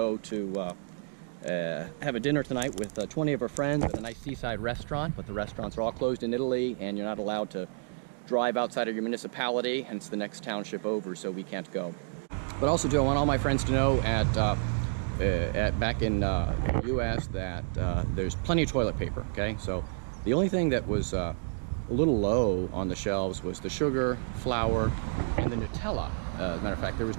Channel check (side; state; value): left; silent; digital silence